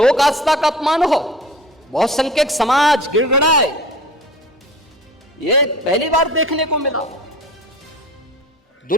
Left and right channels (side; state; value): both; normal; correlation 0.41